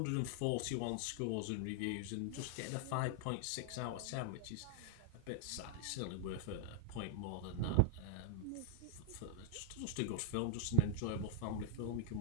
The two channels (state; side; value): different; both; correlation 0.00